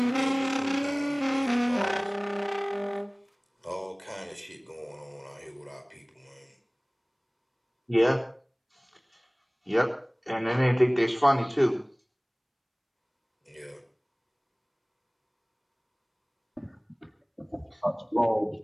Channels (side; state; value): both; identical; correlation 1.00